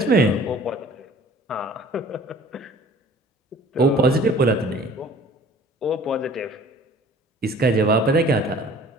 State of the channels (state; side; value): normal; both; correlation 0.49